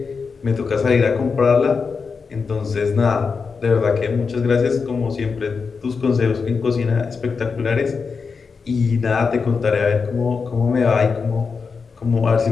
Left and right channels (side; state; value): right; quieter; 5.2 dB